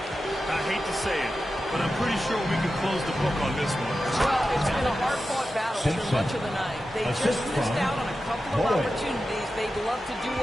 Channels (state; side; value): normal; both; correlation 0.92